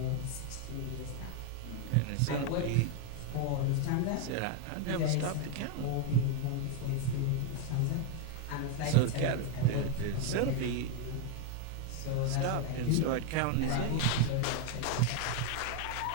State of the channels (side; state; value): both; different; correlation 0.01